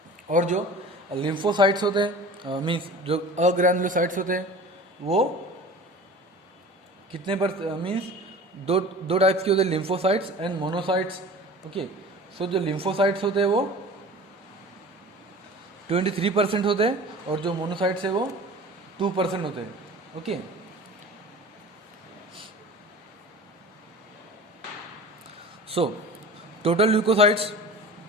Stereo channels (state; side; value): normal; both; correlation 0.39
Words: और जो लिम्फोसाइट्स होते हैं मीन्स जो अग्रैनुलोसाइट्स होते हैं वो कितने पर मीन्स दो टाइप्स के होते हैं, लिम्फोसाइट्स एंड मोनोसाइट्स. ओके, सो जो लिम्फोसाइट्स होते हैं वो 23% होते हैं और जो मोनोसाइट्स है वो 2% होते हैं. ओके, सो टोटल ल्यूकोसाइट्स